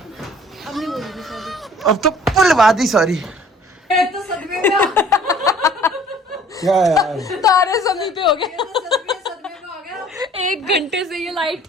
नहीं बोलूंगी सॉरी। अब तो बुलवा दी सॉरी। तो सदमे में क्या यार, तारे जमीन पे हो गए। सदमे में आ गया। 1 घंटे से ये लाइट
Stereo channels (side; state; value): both; normal; correlation 0.53